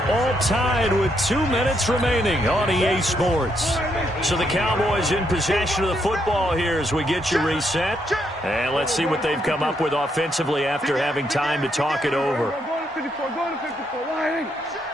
All tied with 2 minutes remaining on EA Sports. So the Cowboys in possession of the football here as we get you reset. And let's see what they've come up with offensively after having time to talk it over. Go to 54, go to 54.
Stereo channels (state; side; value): normal; both; correlation 0.76